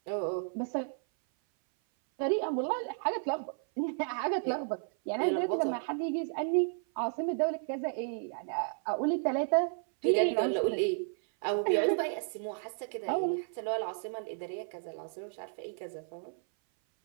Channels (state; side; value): silent; left; 56 dB below the other